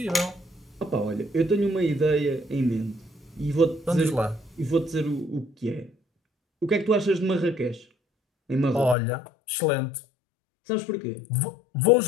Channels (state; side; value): drops out; right; at 9.0 s